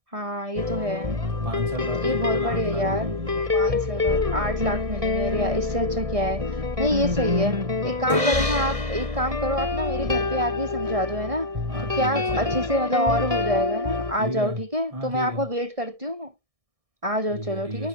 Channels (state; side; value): late; left; 1.6 ms